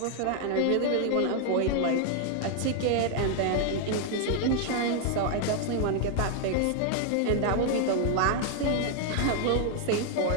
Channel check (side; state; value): both; different; correlation 0.00